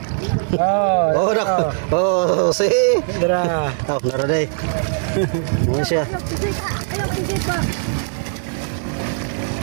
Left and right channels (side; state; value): left; silent; digital silence